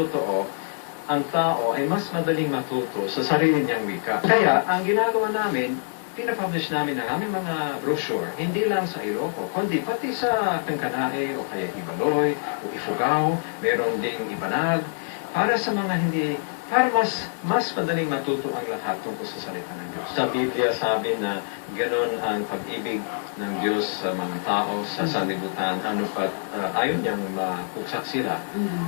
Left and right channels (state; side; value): silent; right; 57 dB below the other